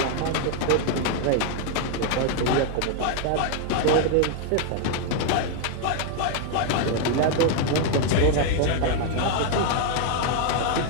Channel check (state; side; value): different; both; correlation 0.00